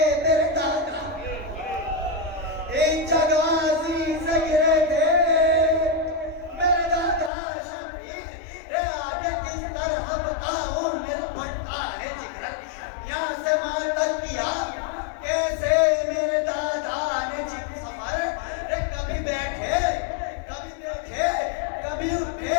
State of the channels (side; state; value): right; drops out; at 7.3 s